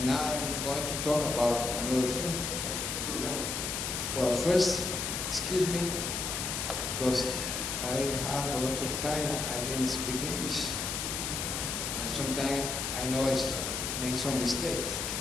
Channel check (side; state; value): left; noise; hiss, 2 dB below the sound